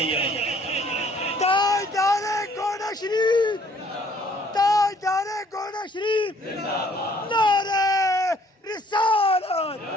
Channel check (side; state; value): both; normal; correlation 0.60